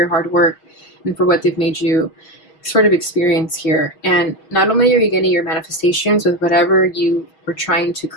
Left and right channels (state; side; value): late; right; 6.3 ms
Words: hard work and for what they've made you sort of experience here. And not only are you getting your manifestations with whatever you were trying to